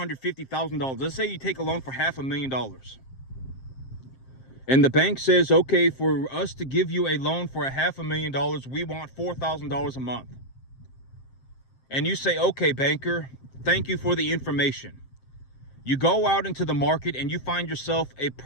Let's say you take a loan for $500,000. And the bank says, okay, for us to give you a loan for $500,000, we want $4,000 a month. And you say, okay, banker, thank you for the information. You go out into the market and you find yourself a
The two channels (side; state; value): right; late; 7.6 ms